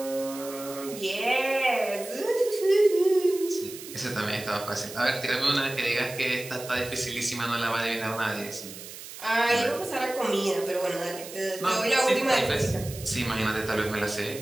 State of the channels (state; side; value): noise; right; hiss, 13 dB below the sound